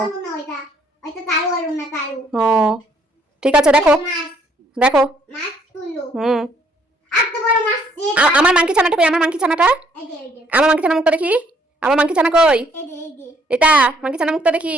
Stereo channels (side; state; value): both; normal; correlation 0.66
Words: না ওইটা। ওইটা তালু হইল না তালু। ও ঠিক আছে, দেখো মাছ দেখো। মাছ তুলো। হুম, এত বড় মাছ আমার মাংকি ছানাটা কই? আমার মাংকি ছানাটা, এই যে এই যে আমার মাংকি ছানা মুখটা দেখি। আমার মাংকি ছানা কই? এই যে এই যে এটা মাংকি ছানা মুখটা দেখি।